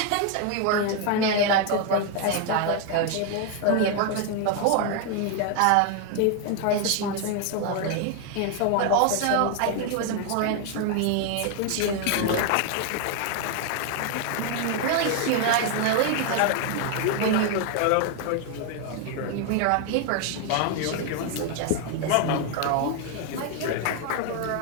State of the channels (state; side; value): different; both; correlation 0.01